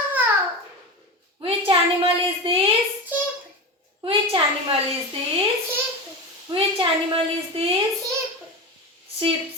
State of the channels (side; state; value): both; normal; correlation 0.23